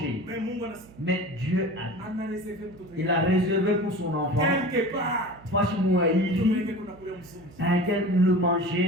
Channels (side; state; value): right; noise; hum, 22 dB below the sound